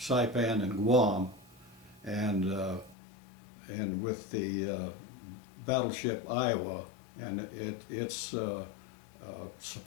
and Guam, and with the battleship Iowa and its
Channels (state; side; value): drops out; right; at 3.0 s